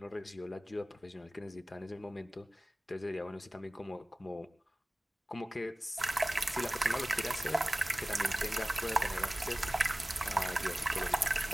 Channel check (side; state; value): both; normal; correlation 0.97